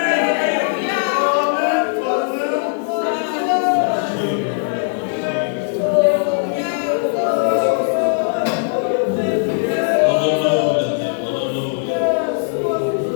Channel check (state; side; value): silent; right; digital silence